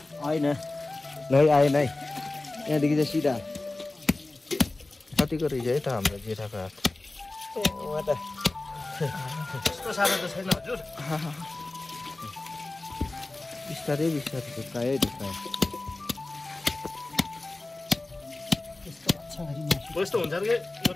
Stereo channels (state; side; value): quieter; right; 3.0 dB